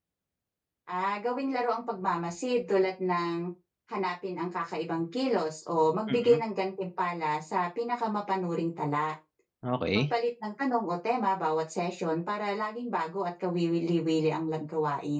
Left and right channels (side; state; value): both; identical; correlation 1.00